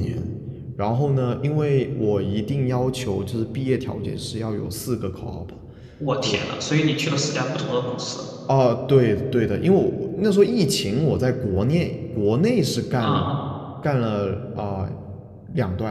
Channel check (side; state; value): both; identical; correlation 1.00